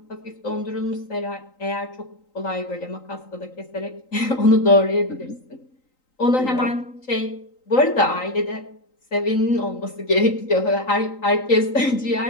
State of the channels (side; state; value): right; late; 3.9 ms